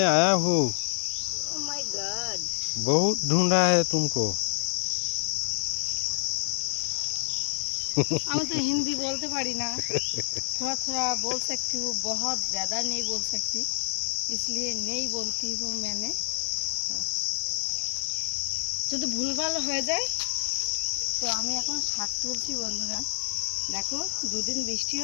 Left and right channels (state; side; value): silent; right; 59 dB below the other